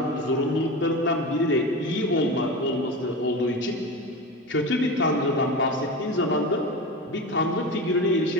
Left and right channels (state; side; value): normal; both; correlation 0.26